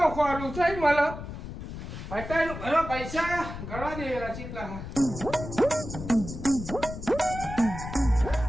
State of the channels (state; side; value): noise; left; rumble, 9 dB below the sound